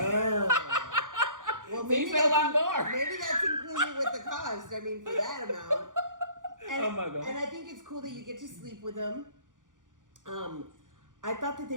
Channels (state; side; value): late; left; 0.88 ms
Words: Oh. Well, maybe a lot more. Maybe that's included with the cost. I mean, for that amount. And, oh my God. And I think it's cool that you get to sleep with them. I thought that